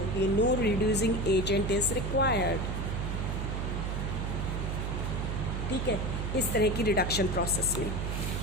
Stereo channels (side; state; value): right; noise; hum, 1 dB below the sound